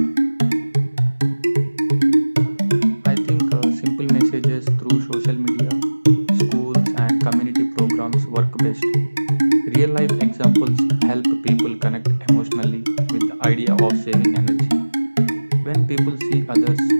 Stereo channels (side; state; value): both; inverted; correlation -1.00